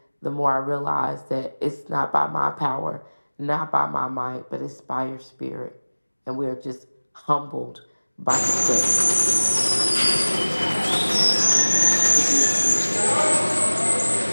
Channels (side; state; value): both; inverted; correlation -1.00